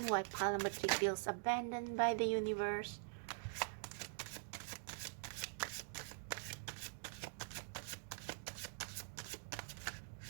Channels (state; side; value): silent; left; digital silence